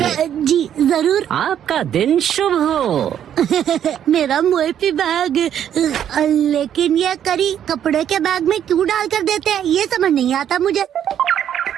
जी जरूर। आपका दिन शुभ हो। मेरा मोएपी बैग। लेकिन ये करी कपड़े के बैग में क्यों डाल कर देते हैं, ये समझ नहीं आता मुझे।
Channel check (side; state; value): left; quieter; 9.8 dB